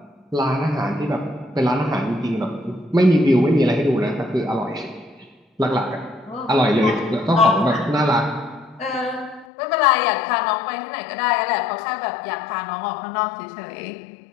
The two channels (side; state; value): right; drops out; at 9.5 s